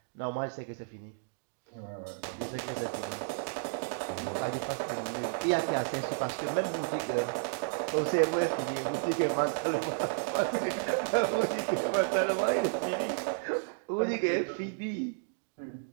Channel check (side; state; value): left; silent; digital silence